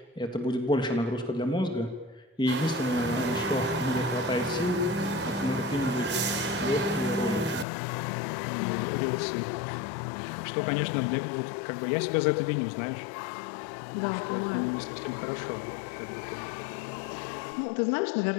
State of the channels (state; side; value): drops out; right; at 7.7 s